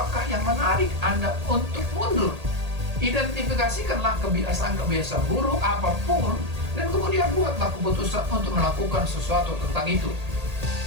yang menarik Anda untuk mundur. Identifikasikanlah kebiasaan-kebiasaan buruk apapun dan kemudian buatlah keputusan untuk melakukan sesuatu tentang itu.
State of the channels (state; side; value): late; left; 1.8 ms